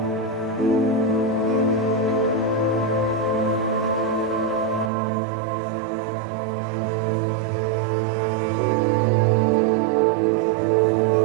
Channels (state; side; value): drops out; left; at 4.9 s